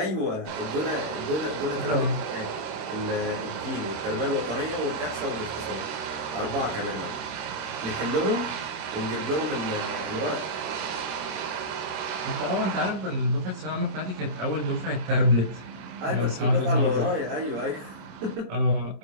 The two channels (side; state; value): left; late; 27 ms